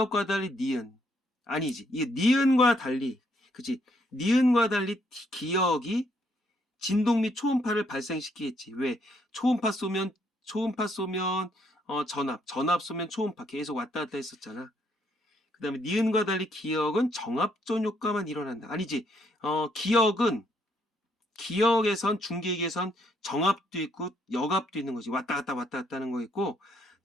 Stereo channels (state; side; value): normal; both; correlation 0.72